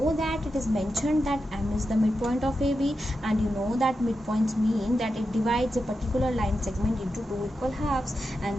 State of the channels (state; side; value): normal; both; correlation 0.89